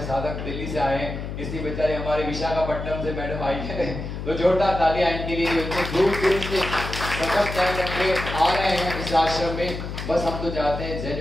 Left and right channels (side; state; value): left; noise; hum, 6 dB below the sound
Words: साधक दिल्ली से आए हैं, इसलिए बेचारे हमारे विशाखापट्टनम से मैडम आई है। तो जोरदार तालियां इनके लिए जो इतने दूर से सफर तय करके आ रहे हैं इस आश्रम में। बस हम तो चाहते हैं जैन